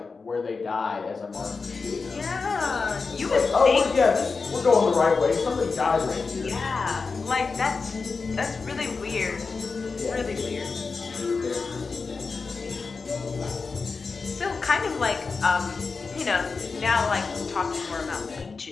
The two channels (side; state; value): right; quieter; 4.6 dB